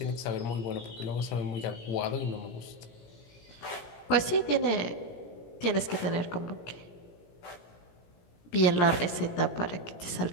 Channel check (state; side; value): late; right; 17 ms